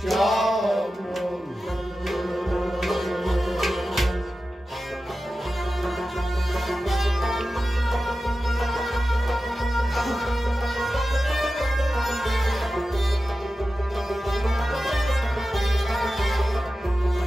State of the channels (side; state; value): both; normal; correlation 0.93